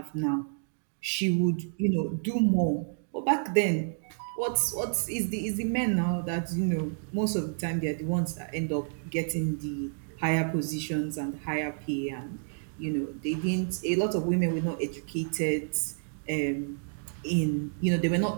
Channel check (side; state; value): left; silent; digital silence